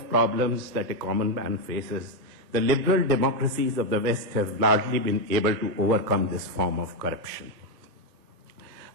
problems that a common man faces. The liberal democracies of the West have largely been able to overcome this form of corruption.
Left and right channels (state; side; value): normal; both; correlation 0.04